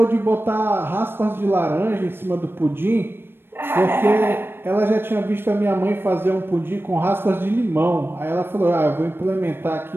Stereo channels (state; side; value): late; left; 0.10 ms